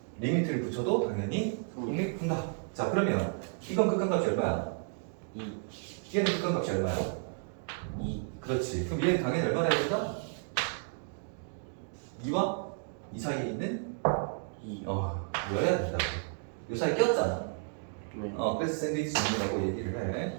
리미트를 붙여도 당연히 성립한다. 자, 그러면 이건 극한값이 얼마야? 2. 얘는 극한값이 얼마야? 2. 그렇지. 그럼 얘는 당연히 얼마나 해야 된다? 2와 2 사이에 있는 2. 여야 된다고. 요 사이에 꼈잖아. 네. 그래서 샌드위치 정리라고 얘기를 해.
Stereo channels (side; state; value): left; silent; 56 dB below the other